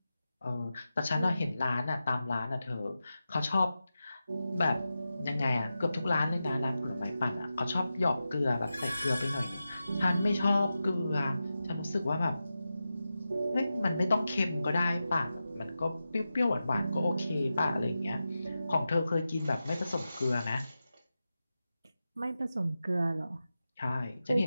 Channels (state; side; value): inverted; both; correlation -0.92